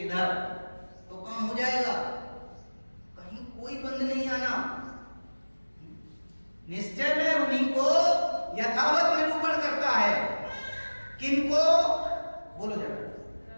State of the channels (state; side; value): inverted; both; correlation -1.00